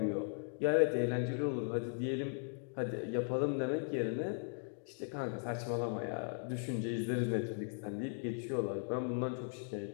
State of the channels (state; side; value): silent; right; 52 dB below the other